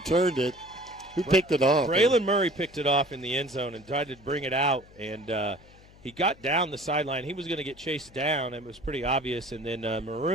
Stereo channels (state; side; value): noise; left; hum, 24 dB below the sound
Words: it. Who picked it off? Braylon Murray picked it off in the end zone and tried to bring it out, and he got down the sideline. He was going to get chased down, and it was pretty obvious. And then